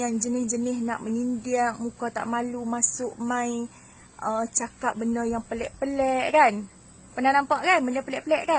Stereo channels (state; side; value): identical; both; correlation 1.00